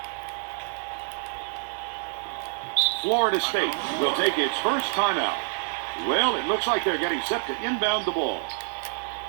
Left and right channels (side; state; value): left; silent; 60 dB below the other